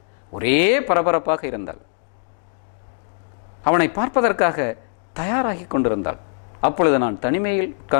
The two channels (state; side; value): silent; right; digital silence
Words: ஒரே பரபரப்பாக இருந்தாள். அவனை பார்ப்பதற்காக தயாராகி கொண்டிருந்தாள். அப்பொழுது நான் தனிமையில்